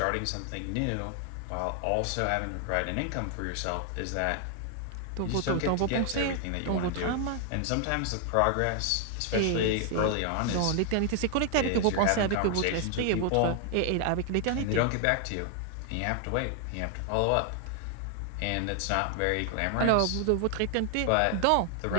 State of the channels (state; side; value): different; both; correlation 0.00